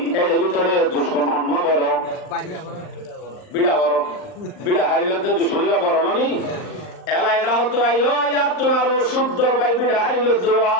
এর ভিতরে দুশ্মন হন্মা বড় বিড়া বড় বিড়া হারিলে তো দুশ্মনরা বড় ননি এলা এরা হতো আইও ইয়ার তোমার শুদ্ধ ভাই বিড়া হারিল দোয়া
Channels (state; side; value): late; right; 39 ms